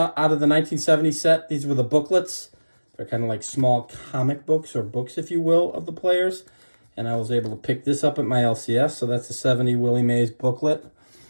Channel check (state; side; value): inverted; both; correlation -1.00